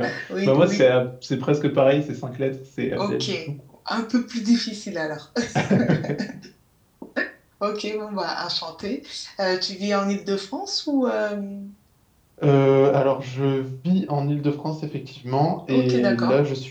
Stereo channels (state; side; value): identical; both; correlation 1.00